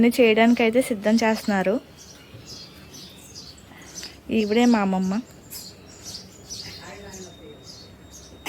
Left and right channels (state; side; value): identical; both; correlation 1.00